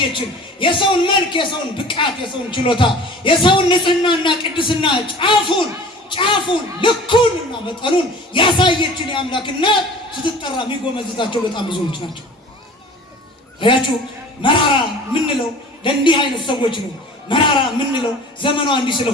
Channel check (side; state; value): both; normal; correlation 0.43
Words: የሰውን መልክ፣ የሰውን ብቃት፣ የሰውን ችሎታ፣ የሰውን ንጽህናና ቅድስና ጫፉን ልኩንና መጠኑን ያሳየችን የአምላክ እናት ስትጠራ የሚጎመዝዛቸው በጣም ብዙዎች ናቸው። አያችሁ፣ መራራ የምንለው ለእንዲህ አይነት ሰዎች ነው። መራራ የምንለው ዘመኗ እንዲህ